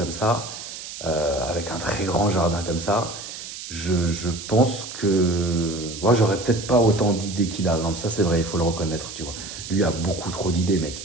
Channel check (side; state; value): right; noise; hiss, 10 dB below the sound